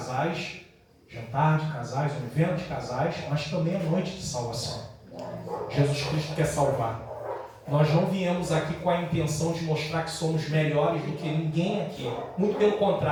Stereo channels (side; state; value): both; identical; correlation 1.00